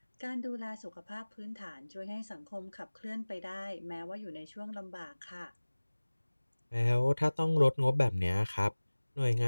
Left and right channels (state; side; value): inverted; both; correlation -1.00